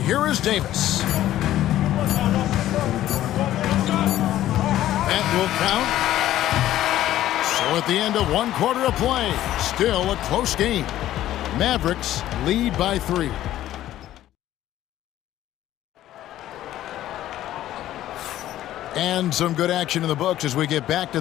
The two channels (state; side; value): quieter; right; 13.4 dB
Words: is Davis. That will count. So at the end of 1 quarter of play, still a close game. Mavericks lead by 3. And some good action in the books as we get back